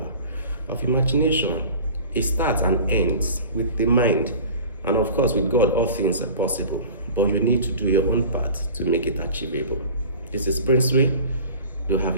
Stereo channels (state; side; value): inverted; both; correlation -0.40